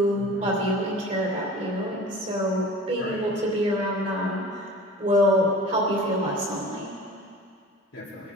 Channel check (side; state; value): both; normal; correlation 0.40